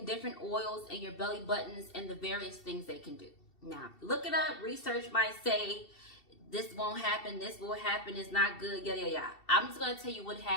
different oils in your belly buttons and the various things they can do. Now, look it up. Research might say this won't happen, this will happen, it's not good, yada, yada, yada. I'm just going to tell you what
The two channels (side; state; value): right; late; 2.7 ms